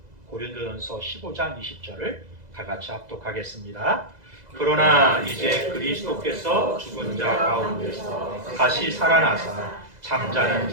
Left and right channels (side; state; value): left; late; 2.0 ms